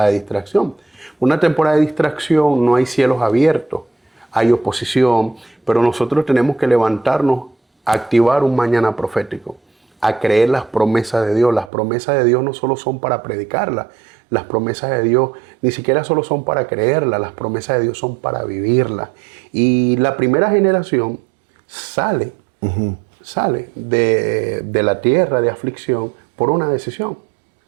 de distracción. Una temporada de distracción no hay cielos abiertos, hay oposición, pero nosotros tenemos que levantarnos a activar un mañana profético, a creer las promesas de Dios. Las promesas de Dios no solo son para predicarlas, las promesas de Dios ni siquiera solo son para creerlas, las promesas de Dios son para vivirlas. Y la primera generación sale de la tierra de aflicción por una decisión.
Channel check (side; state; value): left; drops out; at 11.7 s